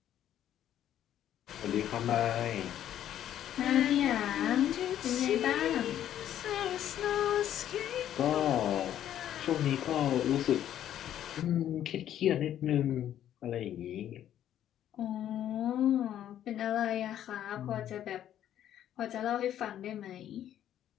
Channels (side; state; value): right; quieter; 11.1 dB